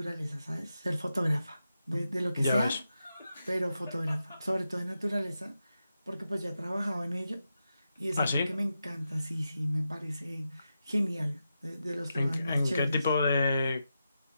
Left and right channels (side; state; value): both; inverted; correlation -0.88